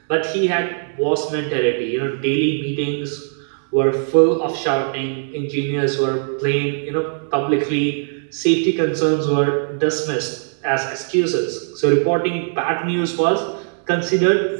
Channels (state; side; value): silent; left; digital silence